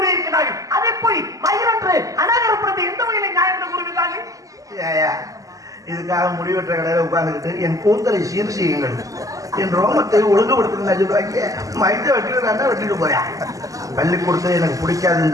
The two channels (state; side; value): late; left; 0.17 ms